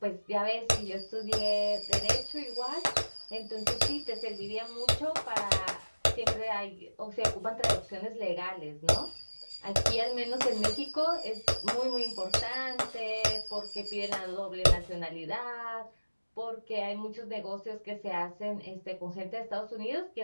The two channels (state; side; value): inverted; both; correlation -1.00